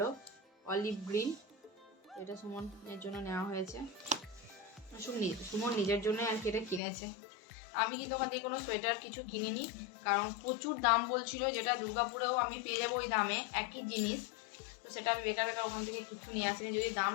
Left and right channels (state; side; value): drops out; right; at 6.8 s